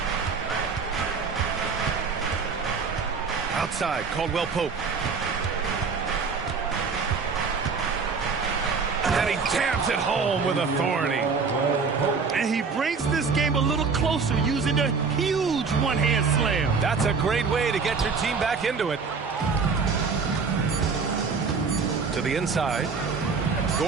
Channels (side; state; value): left; quieter; 5.1 dB